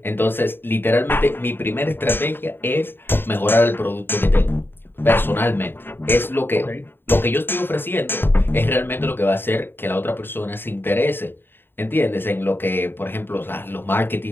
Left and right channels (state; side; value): late; right; 0.10 ms